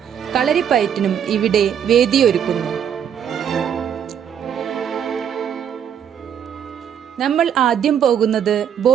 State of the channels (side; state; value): left; quieter; 8.6 dB